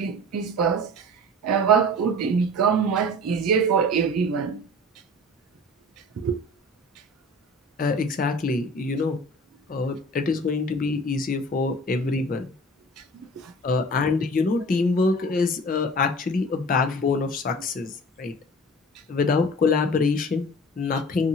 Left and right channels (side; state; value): both; normal; correlation 0.40